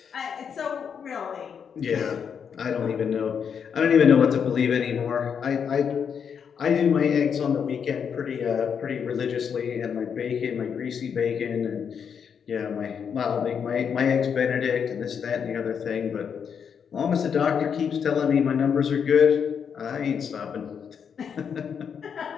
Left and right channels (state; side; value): quieter; right; 7.2 dB